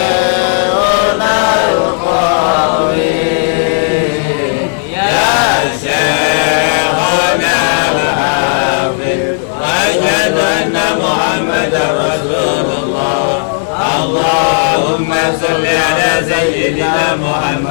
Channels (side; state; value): right; silent; digital silence